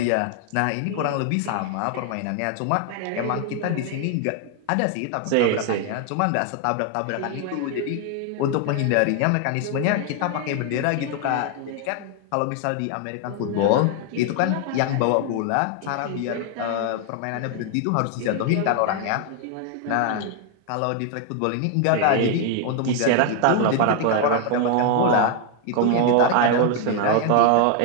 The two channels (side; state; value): both; different; correlation 0.00